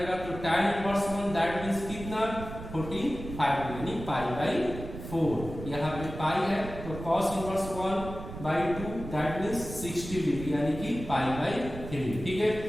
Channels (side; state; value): right; noise; rumble, 10 dB below the sound